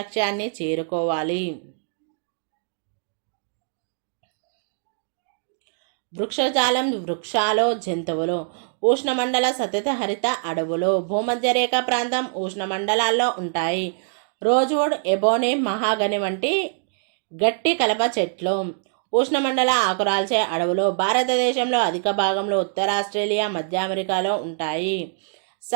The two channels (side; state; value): left; silent; digital silence